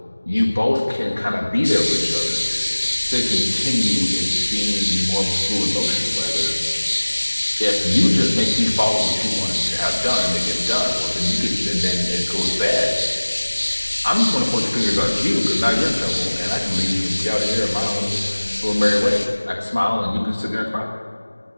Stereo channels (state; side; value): inverted; both; correlation -1.00